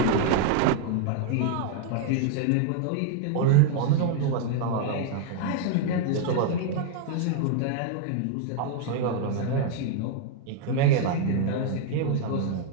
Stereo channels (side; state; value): both; different; correlation 0.00